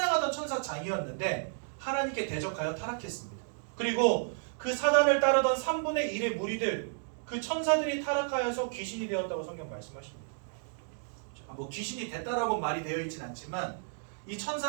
천사장이었는데 하나님께 대적하여 타락했습니다. 그리고 그 사단을 따르던 3분의 1의 무리들, 그 천사들이 타락하여서 귀신이 되었다고 성경 말씀하십니다. 뭐 귀신이 됐다라고 말이 되어 있진 않지만 이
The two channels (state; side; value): silent; left; digital silence